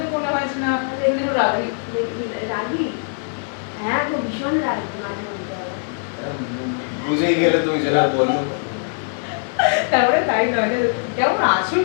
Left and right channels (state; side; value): silent; right; 65 dB below the other